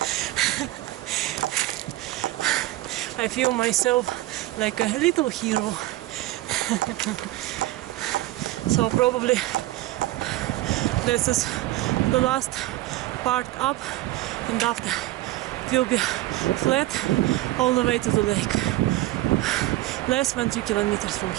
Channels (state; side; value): quieter; left; 17.0 dB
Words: I feel myself like a little hero. So probably this is the last part up, and after it will be flat all the way to the lake. Less than 3 kilometers from